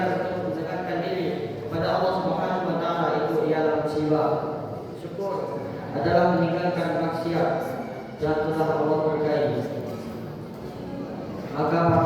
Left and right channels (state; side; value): identical; both; correlation 1.00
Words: untuk mendekatkan diri kepada Allah Subhanahu wa taala, itu ialah musibah. Syukur adalah meninggalkan maksiat yang telah Allah berkahi. Maka